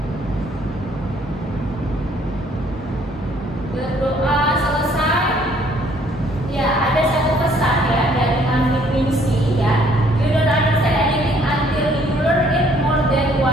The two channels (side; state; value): both; normal; correlation 0.63